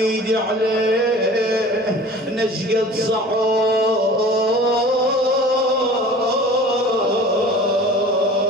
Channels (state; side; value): normal; both; correlation 0.43